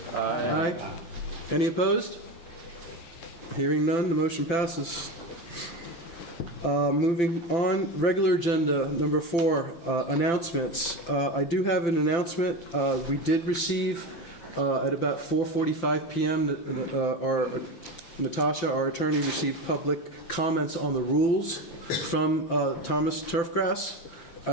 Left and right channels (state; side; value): late; right; 5.9 ms